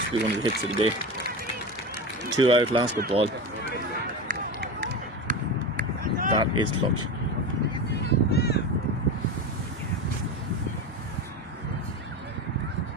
to be one of the hits of the day. 2 out, last good ball. That is clutch.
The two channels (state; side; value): normal; both; correlation 0.23